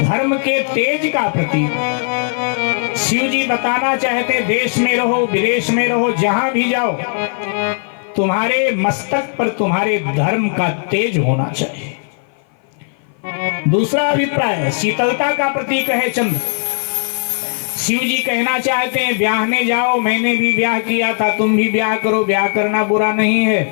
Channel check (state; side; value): silent; right; 56 dB below the other